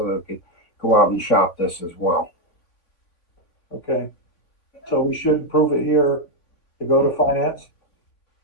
that we could go out and shop this as well. Okay. So we should approve it here to go to finance.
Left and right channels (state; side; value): late; right; 3.5 ms